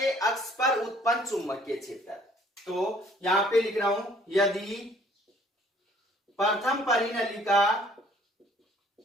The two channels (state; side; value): normal; both; correlation 0.58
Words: अक्ष पर उत्पन्न चुंबकीय क्षेत्र, तो यहां पे लिख रहा हूं, यदि प्रथम